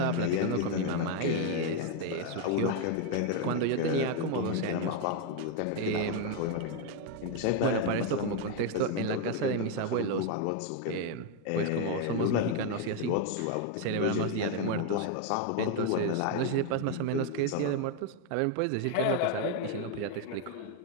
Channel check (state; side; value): different; both; correlation 0.01